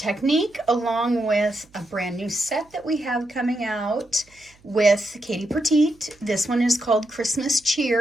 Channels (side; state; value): right; noise; hum, 30 dB below the sound